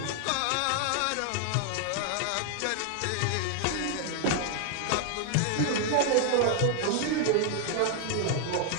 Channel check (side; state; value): both; different; correlation 0.00